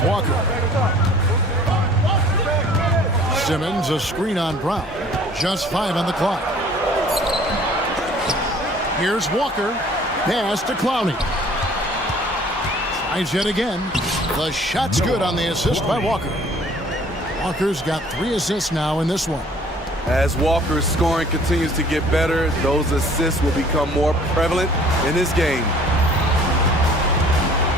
Walker. Simmons, a screen on Brown. Just 5 on the clock. Here's Walker. Pass to Clowney. Tries yet again. The shot's good on the assist by Walker. Walker's got 3 assists now in this one. As Walker's scoring continues to get better, those assists will become more prevalent in this game.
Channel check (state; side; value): normal; both; correlation 0.52